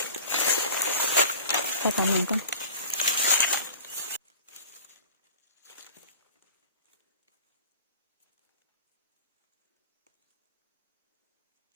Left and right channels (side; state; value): both; inverted; correlation -0.39